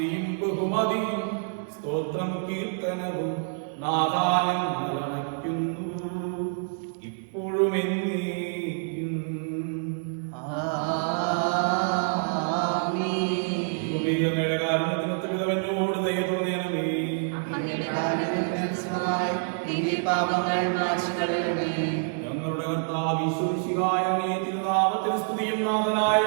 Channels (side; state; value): left; silent; 60 dB below the other